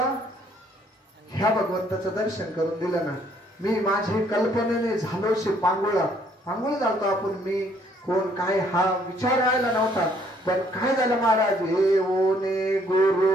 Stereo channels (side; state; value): both; normal; correlation 0.65